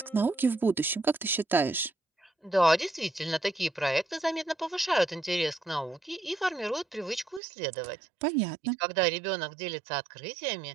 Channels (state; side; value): drops out; left; at 7.4 s